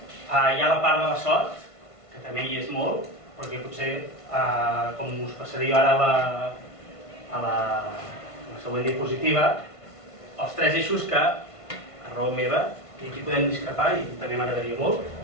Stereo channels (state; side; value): late; right; 1.5 ms